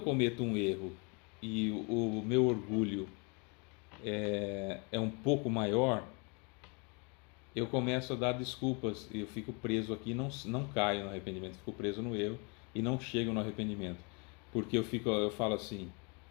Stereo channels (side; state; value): right; quieter; 32.9 dB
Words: cometo um erro e o meu orgulho é um pouco maior, eu começo a dar desculpas e eu fico preso aqui, não caio no arrependimento, fico preso no erro, e não chegam no arrependimento. Porque eu falo assim,